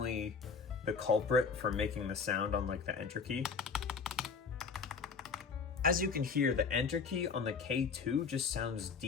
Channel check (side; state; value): right; quieter; 5.4 dB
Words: the culprit for making the sound on like the enter key. As you can hear, the enter key on the K2 just sounds